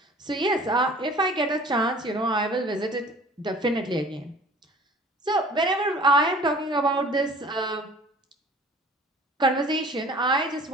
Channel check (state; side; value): normal; both; correlation 0.48